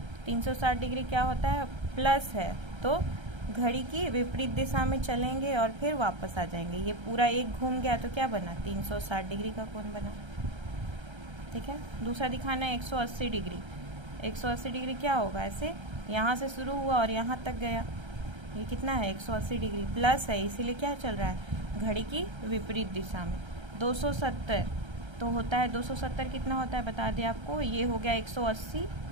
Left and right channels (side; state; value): left; late; 1.3 ms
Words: 360 डिग्री क्या होता है, प्लस है, तो घड़ी की विपरीत दिशा में चलेंगे और फिर वापस आ जाएंगे। ये पूरा एक घूम गया तो क्या बना, 360 डिग्री का कोण बना, ठीक है। दूसरा दिखाना है 180 डिग्री। 180 डिग्री क्या होगा, ऐसे यहाँ से शुरू हुआ और यहाँ तक गया, ये कितना है, 180 डिग्री, प्लस है, इसीलिए क्या चल रहा है, घड़ी की विपरीत दिशा में। 270 तो होता है, 270 कितना होता है बता दें आपको, ये हो गया 180,